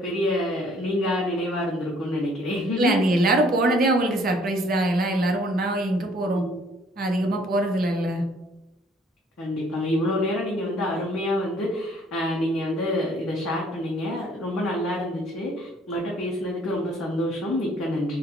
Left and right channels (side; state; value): both; normal; correlation 0.60